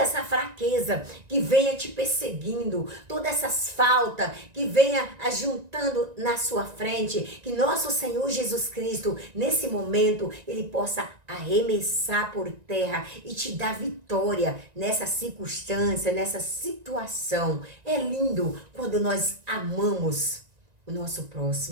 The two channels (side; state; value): left; late; 1.9 ms